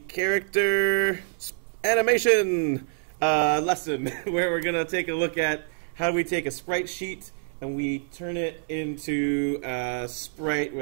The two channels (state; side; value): silent; left; digital silence